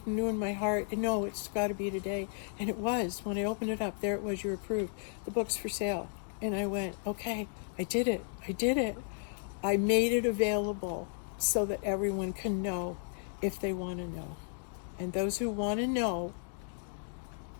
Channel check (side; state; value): right; silent; digital silence